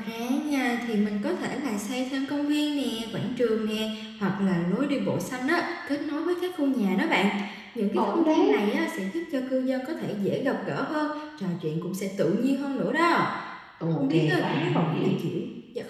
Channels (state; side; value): identical; both; correlation 1.00